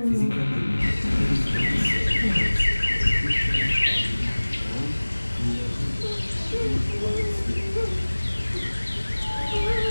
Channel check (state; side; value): inverted; both; correlation -1.00